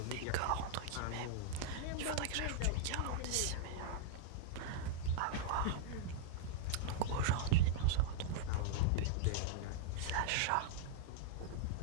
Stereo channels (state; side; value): different; both; correlation -0.01